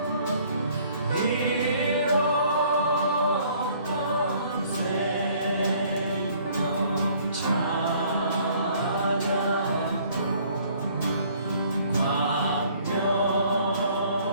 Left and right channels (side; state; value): both; inverted; correlation -0.59